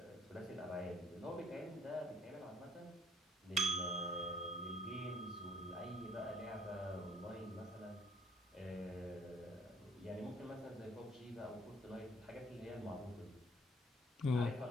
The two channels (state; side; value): normal; both; correlation 0.61